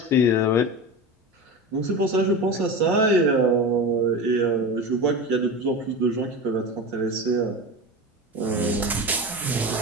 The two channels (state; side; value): normal; both; correlation 0.26